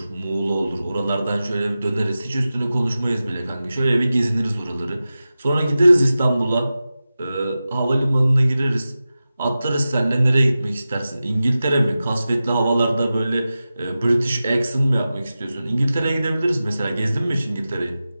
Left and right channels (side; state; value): both; inverted; correlation -0.94